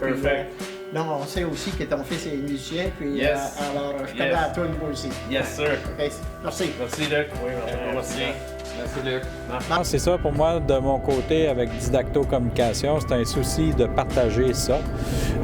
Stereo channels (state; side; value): identical; both; correlation 1.00